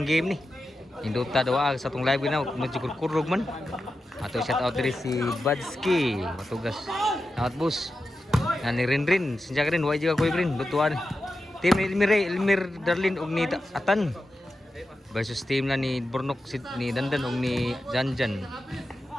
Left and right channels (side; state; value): both; normal; correlation 0.91